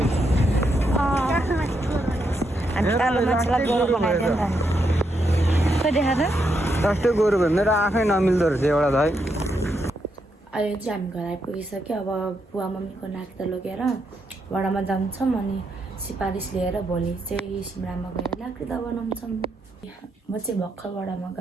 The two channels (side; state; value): both; normal; correlation 0.80